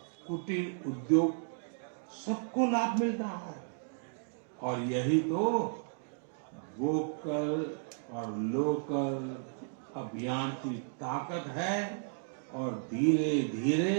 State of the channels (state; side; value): silent; left; digital silence